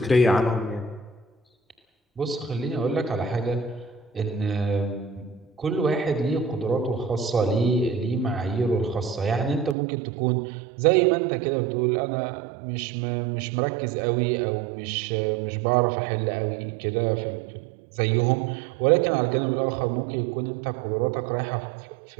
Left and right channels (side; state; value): left; drops out; at 9.8 s